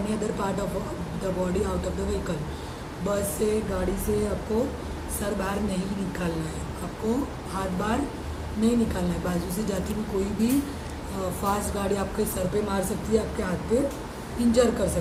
other part of the body out of the vehicle. Bus से, गाड़ी से आपको सर बाहर नहीं निकालना है, आपको हाथ बाहर नहीं निकालना है. बाजू से जाती हुई कोई भी फास्ट गाड़ी आपके सर पे मार सकती है, आपके हाथ पे इंजर कर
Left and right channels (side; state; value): both; identical; correlation 1.00